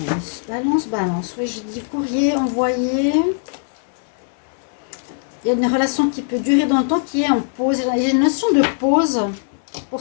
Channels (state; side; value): silent; right; 66 dB below the other